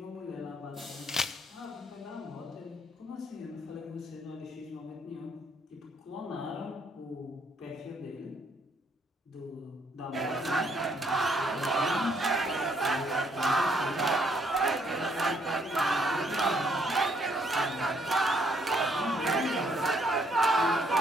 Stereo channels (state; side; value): normal; both; correlation 0.69